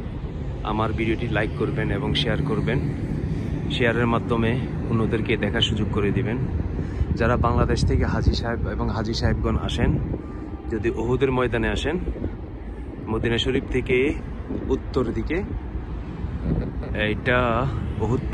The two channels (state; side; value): identical; both; correlation 1.00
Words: আমার ভিডিওটি লাইক করবেন এবং শেয়ার করবেন। শেয়ারের মাধ্যমে অন্যদেরকে দেখার সুযোগ করে দিবেন। যারা বাংলাদেশ থেকে হাজী সাহেব এবং হাজী সাহেবগণ আসেন, যদি উহুদের ময়দানে আসেন, মদিনা শরীফ থেকে উত্তর দিকে এটা উহুদ